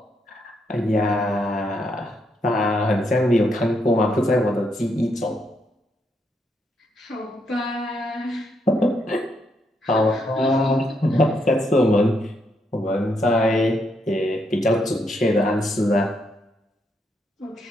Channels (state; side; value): normal; both; correlation 0.77